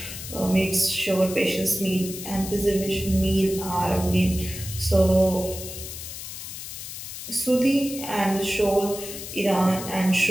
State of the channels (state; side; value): noise; left; hiss, 9 dB below the sound